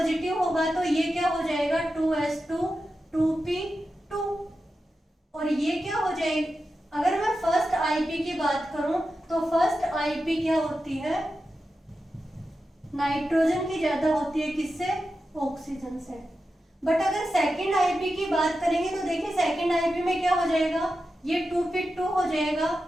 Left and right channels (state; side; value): normal; both; correlation 0.91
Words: होगा तो ये क्या हो जाएगा 2s2 2p2, और ये क्या हो जाएगी, अगर मैं फर्स्ट आईपी की बात करूं तो फर्स्ट आईपी क्या होती है, नाइट्रोजन की ज्यादा होती है, किससे, ऑक्सीजन से। बट अगर सेकंड आईपी की बात करेंगे तो देखिए सेकंड आईपी में क्या हो जाएगा, ये 2p2 हो जाएगा,